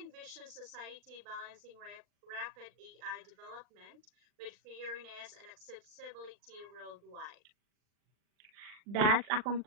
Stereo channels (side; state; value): left; late; 39 ms